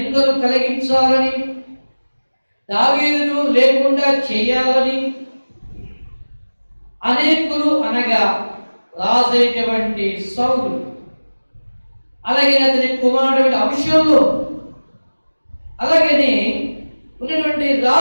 కలిగించాలని, దావీదును లేకుండా చేయాలని అనేకులు అనగా రాజైనటువంటి సౌలు, అలాగే అతని కుమారుడు అబ్షాలోము, అలాగనే ఉన్నటువంటి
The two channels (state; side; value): inverted; both; correlation -1.00